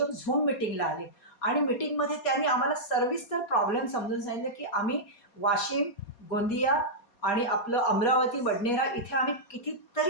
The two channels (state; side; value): late; right; 4.2 ms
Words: Zoom मीटिंगला आले आणि मीटिंगमध्ये त्यांनी आम्हाला सविस्तर प्रॉब्लेम समजून सांगितलं, की आम्ही वाशिम, गोंदिया आणि आपलं अमरावती, बडनेरा इथे आम्ही